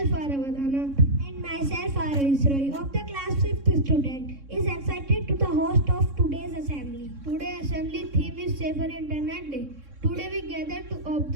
Aravadhana And myself, Roy, of the class 5th student, is excited to the host of today's assembly. Today assembly theme is Safer Internet Day. Today we gather to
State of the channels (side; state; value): left; late; 3.6 ms